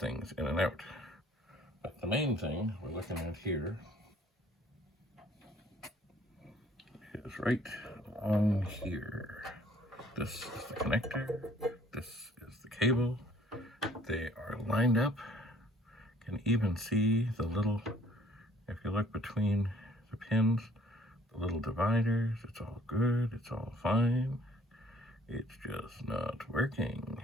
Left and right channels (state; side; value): normal; both; correlation 0.58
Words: in and out. But the main thing we're looking at here is right on here. This is the connector. This is the cable. They are lined up. You can even see the little, if you look between the pins, the little dividers. It's all good. It's all fine. It's just not working.